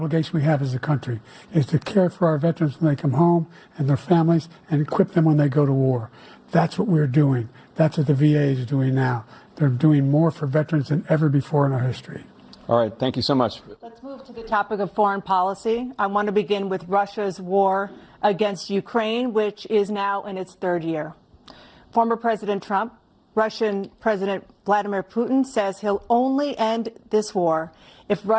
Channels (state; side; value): identical; both; correlation 1.00